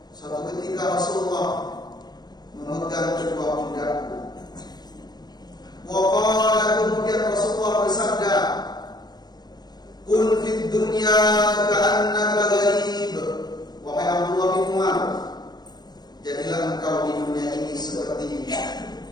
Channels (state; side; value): late; right; 0.20 ms